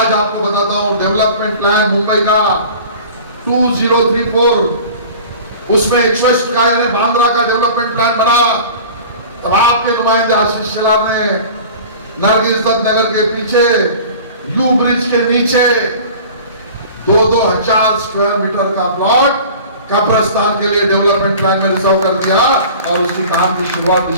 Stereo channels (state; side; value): inverted; both; correlation -0.41